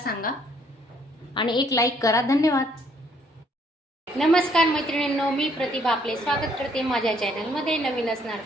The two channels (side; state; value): both; normal; correlation 0.66